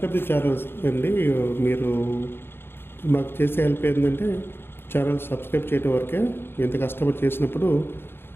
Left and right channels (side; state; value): right; late; 0.11 ms